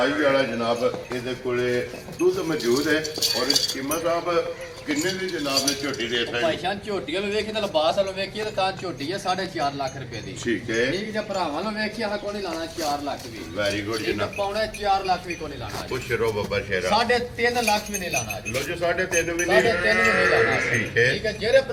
ਵਾਲਾ ਜਨਾਬ ਇਹਦੇ ਕੋਲੇ ਦੁੱਧ ਮੌਜੂਦ ਹੈ ਔਰ ਕੀਮਤ ਸਾਹਿਬ ਕਿੰਨੇ ਦੀ ਜਨਾਬ ਨੇ ਝੋਟੀ ਦੇ ਭਾਈ ਸਕਦੇ? ਜਾਨ ਝੋਟੀਆਂ ਨੂੰ ਵੇਖੀ ਤਾਂ ਲਿਬਾਸ ਵਾਲੋਂ ਵੇਖੀਏ ਤਾਂ ਝੋਟੀ ਹੈ 4.5 ਲੱਖ ਰੁਪਏ ਦੀ। ਠੀਕ ਹੈ, ਠੀਕ ਜੇ ਭਰਾਵਾਂ ਨੂੰ ਵੇਖੀਏ ਹਾਂ ਕੋਈ ਨਹੀਂ ਲਾਣਾ 4 ਲੱਖ ਵੀ। ਵੈਰੀ ਗੁੱਡ ਠੀਕ ਹੈ ਜਨਾਬ। ਪੌਣੇ 4 ਲੱਖ ਵੀ ਕੋਈ ਨਹੀਂ ਲਾਣਾ। ਖੁਸ਼ ਰਹੋ ਬੱਬਾ ਸ਼ੇਰਾ। 3.5 ਲੱਖ ਵੀ ਨਹੀਂ ਲਾਣਾ। ਲੋ ਜੀ 3.5 ਵੀ 3.5 ਨਹੀਂ। ਵੀ ਨਹੀਂ ਲਾਣਾ। ਠੀਕ ਹੈ। ਠੀਕ ਹੈ ਜਿਹੜੇ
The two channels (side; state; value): both; identical; correlation 1.00